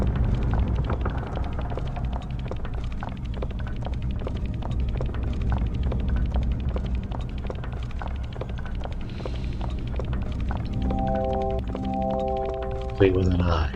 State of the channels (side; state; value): both; identical; correlation 1.00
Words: Wait with an eye.